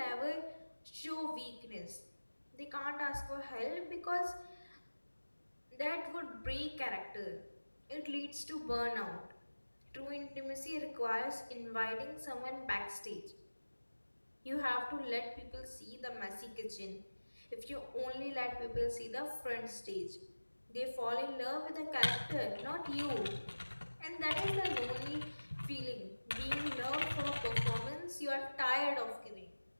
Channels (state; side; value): inverted; both; correlation -1.00